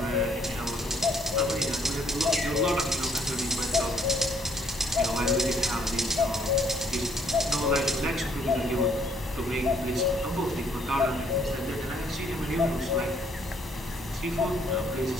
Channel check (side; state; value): both; normal; correlation 0.65